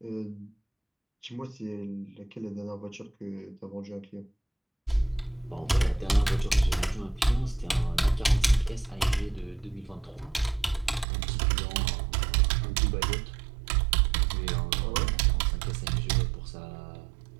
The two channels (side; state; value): left; drops out; at 11.1 s